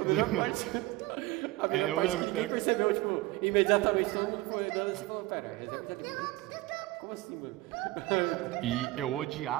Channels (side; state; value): left; quieter; 18.9 dB